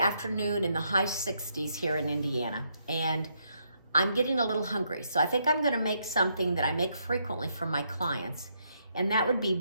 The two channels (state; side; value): inverted; both; correlation -0.76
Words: in the high 60s here in Indiana, and I'm getting a little hungry. So I think I'm gonna make something that I make frequently for my clients, and that would be